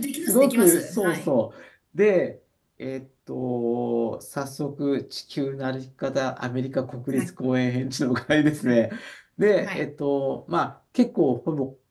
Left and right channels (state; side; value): identical; both; correlation 1.00